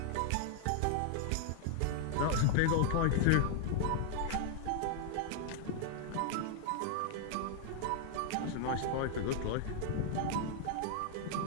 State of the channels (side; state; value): both; different; correlation 0.00